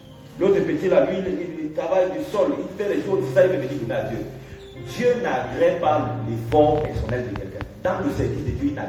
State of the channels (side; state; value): both; identical; correlation 1.00